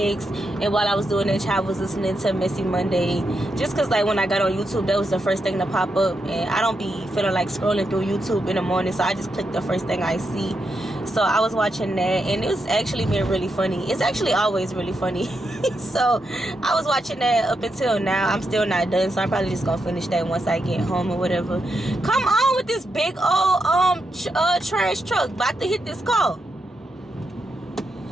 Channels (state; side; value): normal; both; correlation 0.84